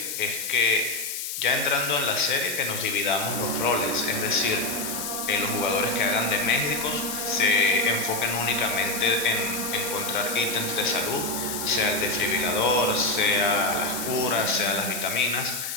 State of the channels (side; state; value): left; noise; hiss, 5 dB below the sound